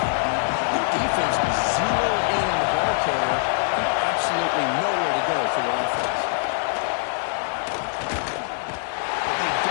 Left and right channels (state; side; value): silent; right; 63 dB below the other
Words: The defense was zeroed in on the ball carrier and absolutely nowhere to go for the offense. But they